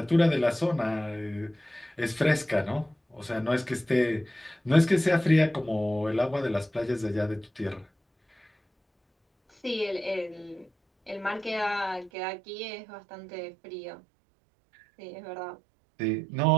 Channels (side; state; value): left; drops out; at 12.1 s